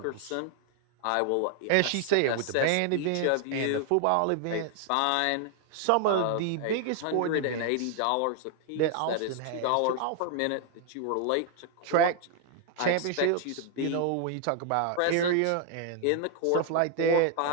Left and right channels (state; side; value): different; both; correlation 0.00